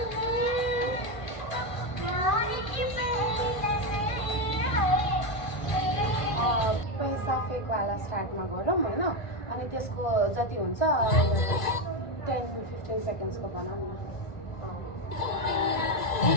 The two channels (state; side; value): late; right; 1.5 ms